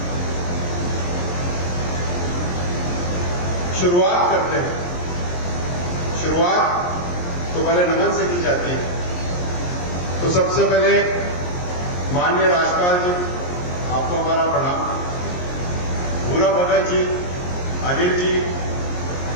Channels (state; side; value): late; right; 23 ms